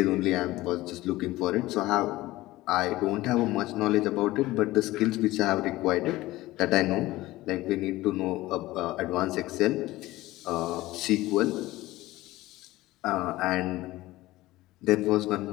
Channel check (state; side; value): quieter; right; 17.8 dB